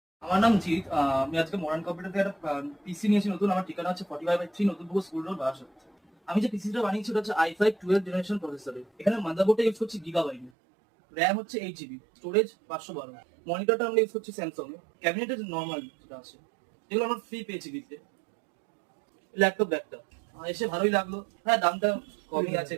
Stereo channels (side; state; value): left; drops out; at 10.5 s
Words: আমার নাম জিৎ। আমি আজকে মডার্ন কম্পিউটার থেকে একটা পিসি নিয়েছি নতুন। আমার ঠিকানা হচ্ছে 45/3 নতুনপুর স্কুল রোড, বারাসাত। আমি যে পিসিটা বানিয়েছি ওটা হচ্ছে i5 12 জেনারেশন প্রসেসরের। এখানে মাদারবোর্ডটা ইউজ করছি গিগাবাইট, র্যাম হচ্ছে 8 জিবি, স্টোরেজ 512। মনিটরটা আমরা ইউজ করছি স্যামসাং এর। ক্যাবিনেটের নর্মাল যেটা আছে, যেগুলো আমরা ফ্রি পেয়েছি দিতে। ল্যাপটপ ব্যাগটা এসে ভালোই লাগলো। হ্যাঁ, দামটা কমই আছে